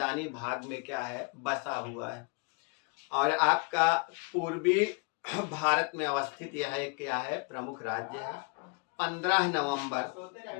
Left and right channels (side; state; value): right; quieter; 33.4 dB